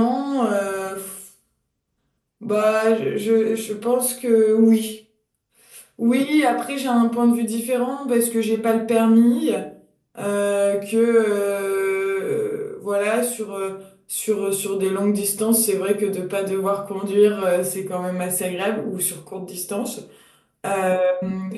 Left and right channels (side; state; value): both; identical; correlation 1.00